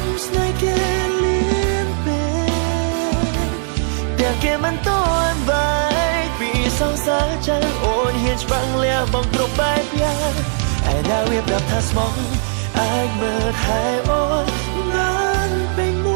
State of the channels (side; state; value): left; silent; 67 dB below the other